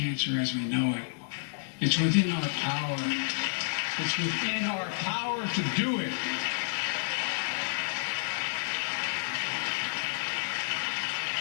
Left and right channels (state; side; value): silent; right; digital silence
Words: as we know it. It's within our power. It's within our power to do it.